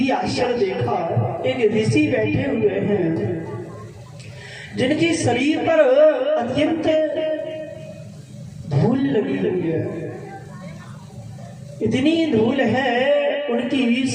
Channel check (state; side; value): identical; both; correlation 1.00